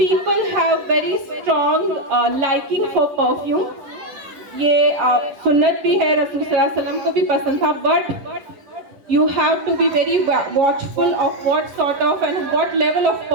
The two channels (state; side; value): late; left; 11 ms